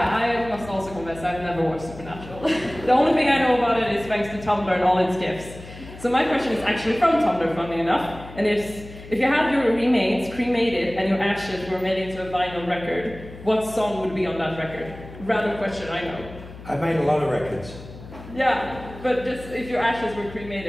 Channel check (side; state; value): left; noise; hum, 16 dB below the sound